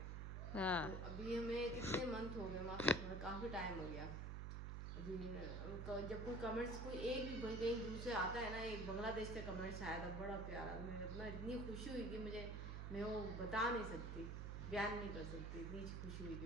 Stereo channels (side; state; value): right; noise; hum, 4 dB below the sound